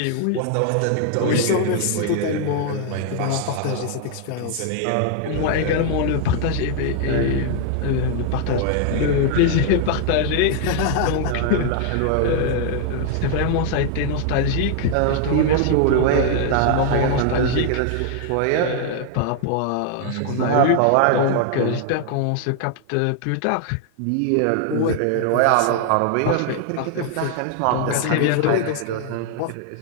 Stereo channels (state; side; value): different; both; correlation 0.00